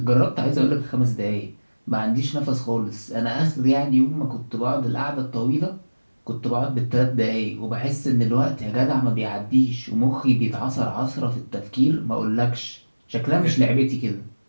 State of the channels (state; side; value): inverted; both; correlation -1.00